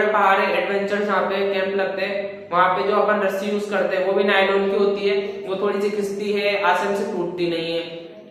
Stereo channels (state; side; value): identical; both; correlation 1.00